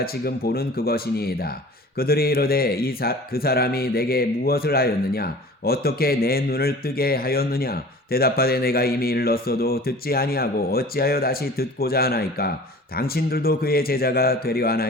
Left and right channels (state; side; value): normal; both; correlation 0.43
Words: 지금 보는 그것이니이다. 그들이 이르되 그 사람이 내게 무엇을 하였느냐. 어떻게 내 눈을 뜨게 하였느냐. 대답하되 내가 이미 일렀어도 듣지 아니하고 어찌하여 다시 듣고자 하나이까. 당신들도 그의 제자가 되려